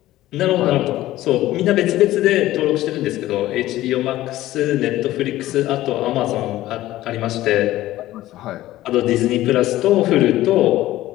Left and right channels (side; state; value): right; quieter; 15.4 dB